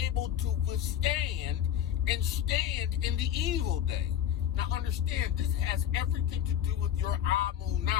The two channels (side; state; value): right; quieter; 10.3 dB